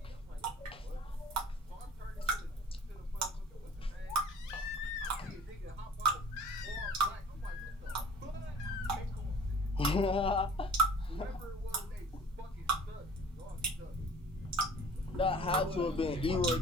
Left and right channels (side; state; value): both; normal; correlation 0.48